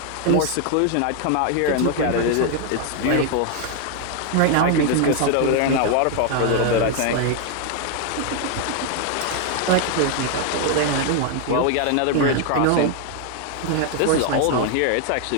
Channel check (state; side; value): different; both; correlation 0.00